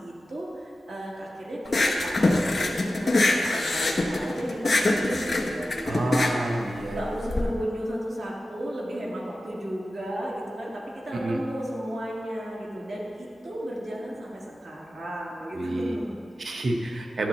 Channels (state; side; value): normal; both; correlation 0.94